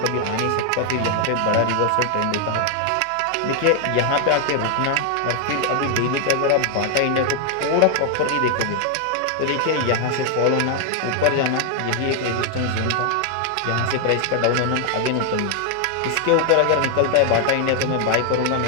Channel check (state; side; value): different; both; correlation 0.00